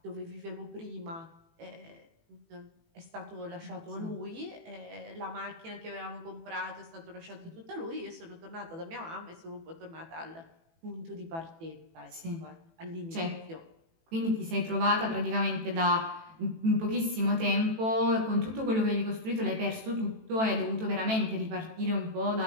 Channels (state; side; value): late; left; 18 ms